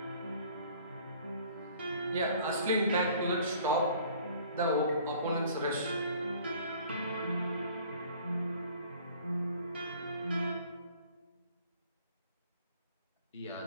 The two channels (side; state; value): both; inverted; correlation -0.53